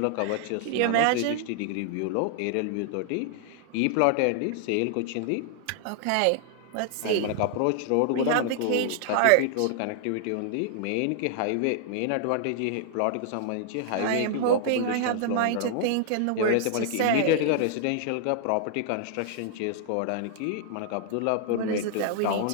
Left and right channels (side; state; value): both; different; correlation -0.01